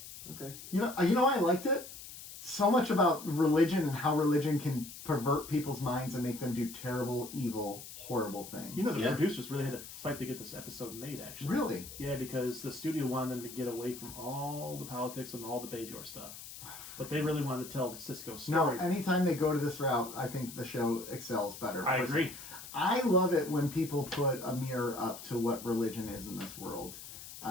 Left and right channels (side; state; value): left; noise; hiss, 13 dB below the sound